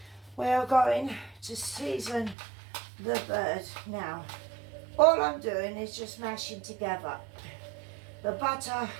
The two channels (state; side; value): drops out; left; at 2.4 s